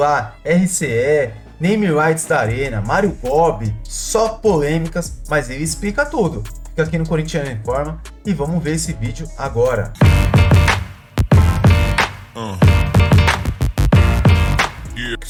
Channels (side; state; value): both; identical; correlation 1.00